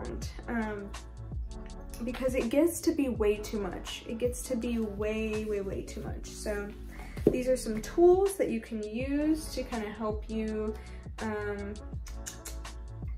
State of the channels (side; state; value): both; identical; correlation 1.00